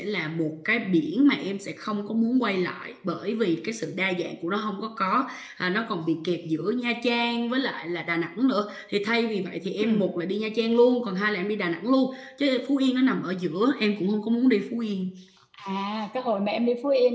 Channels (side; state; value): both; identical; correlation 1.00